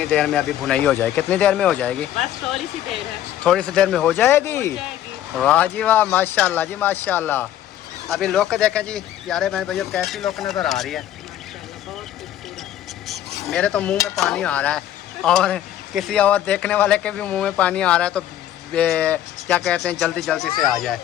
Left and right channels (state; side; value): quieter; right; 11.9 dB